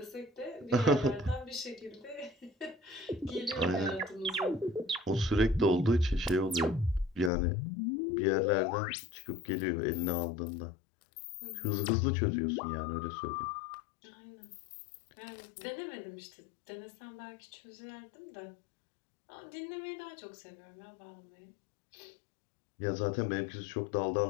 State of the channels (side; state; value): right; drops out; at 7.3 s